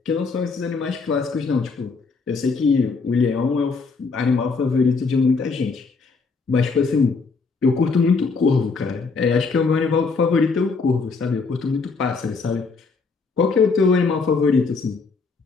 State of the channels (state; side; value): quieter; right; 4.5 dB